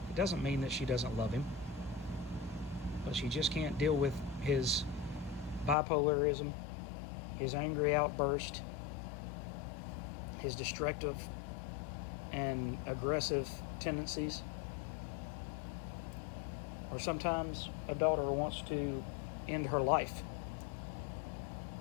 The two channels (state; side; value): drops out; right; at 5.8 s